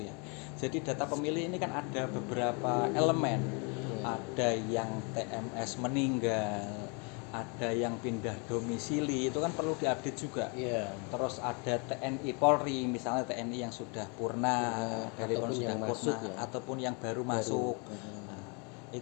ya. Jadi data pemilih ini kan ada beberapa elemen. Ada yang TMS meninggal, ada yang pindah domisili, itu kan perlu diupdate juga. Terus ada TNI Polri, misalnya TNI yang sudah purna, dari sudah purna, ataupun yang baru masuk. Nah,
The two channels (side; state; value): right; quieter; 33.9 dB